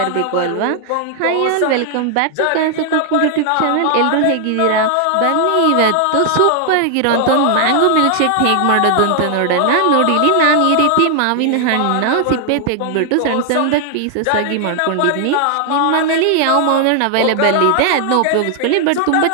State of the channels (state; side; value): different; both; correlation 0.00